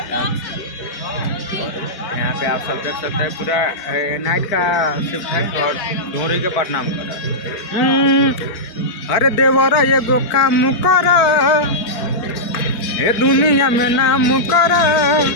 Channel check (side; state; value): right; late; 4.5 ms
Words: और यहाँ पे आप सब देख सकते हैं पूरा नाइट का शिफ्ट है और ढोरी के प्रणाम कर रहा है। अरे देवरा ये गो काम कर ए दुनिया में नाम कर